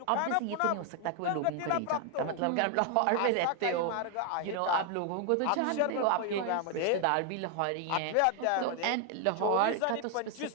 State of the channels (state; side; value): different; both; correlation 0.00